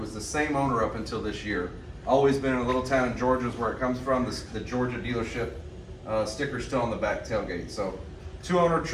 the same owner up until this year. Always been in a little town in Georgia is where it comes from. The Georgia dealership sticker's still on the back tailgate. So 200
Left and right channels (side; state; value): both; identical; correlation 1.00